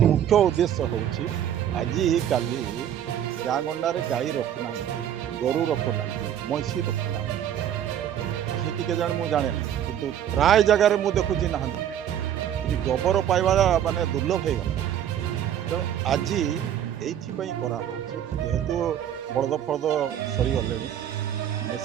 उद्देश्य हूँ आजिकाली गाँ गंडारे गाई रखुना गोरु रखुना मैसी रखुना के जाने मुझे जाने कि प्राय जगार मुझे देखुची ना गोबर पाइबा माने दुर्लभ हो गला तो आज ये करा जेहेतु बलद फलद सरीगले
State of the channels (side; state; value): left; quieter; 10.2 dB